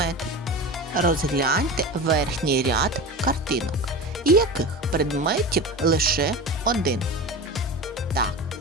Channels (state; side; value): normal; both; correlation 0.29